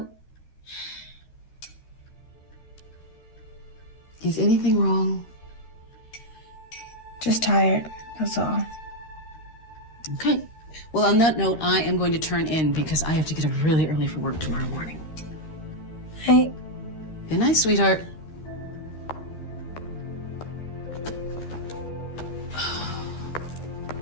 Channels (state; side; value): late; right; 13 ms